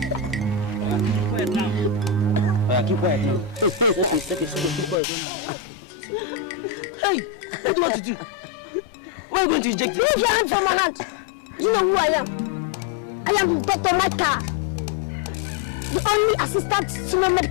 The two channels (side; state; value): right; drops out; at 5.0 s